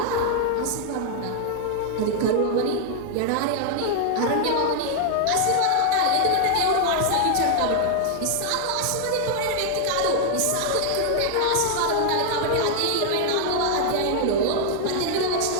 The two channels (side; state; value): both; different; correlation 0.00